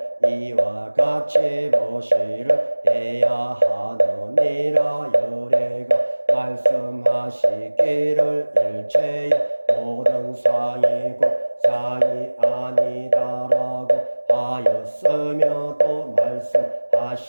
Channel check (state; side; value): inverted; both; correlation -1.00